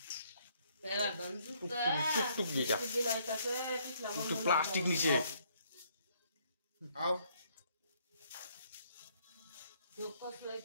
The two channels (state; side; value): inverted; both; correlation -0.67